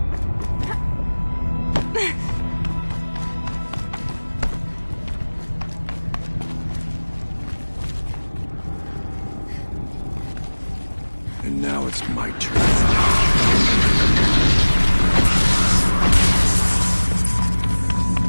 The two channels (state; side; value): inverted; both; correlation -1.00